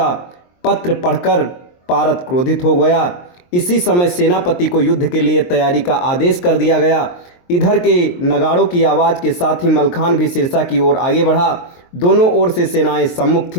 पत्र पढ़कर पारत क्रोधित हो गया। इसी समय सेनापति को युद्ध के लिए तैयारी का आदेश कर दिया गया। इधर के नगाड़ों की आवाज़ के साथ ही मलखान भी सिरसा की ओर आगे बढ़ा। दोनों ओर से सेनाएं सम्मुख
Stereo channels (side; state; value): right; late; 23 ms